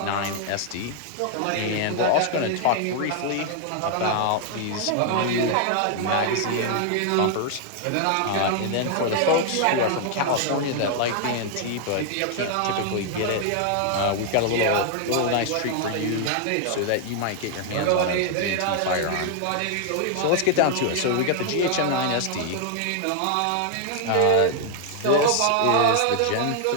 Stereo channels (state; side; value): different; both; correlation 0.00